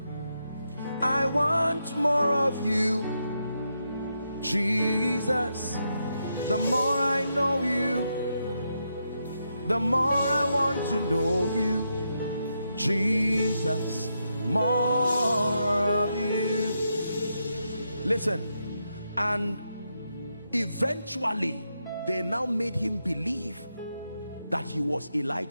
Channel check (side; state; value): both; inverted; correlation -0.83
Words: I want more of you, Jesus. The more I know you, the more I want to know you, Jesus. More of you. Listen, and eventually they now made him believe that he was